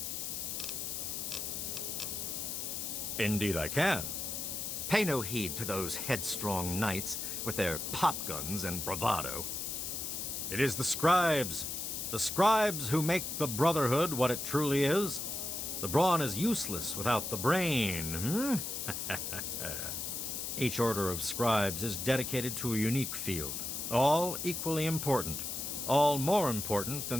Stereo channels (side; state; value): left; noise; hiss, 4 dB below the sound